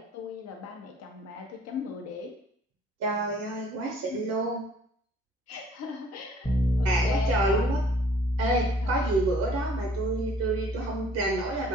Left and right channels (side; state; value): both; normal; correlation 0.57